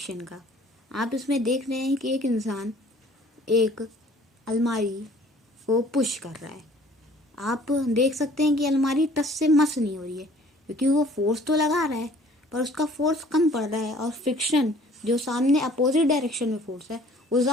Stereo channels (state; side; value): normal; both; correlation 0.54